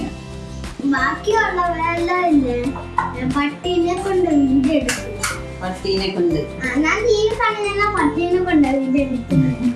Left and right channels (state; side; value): identical; both; correlation 1.00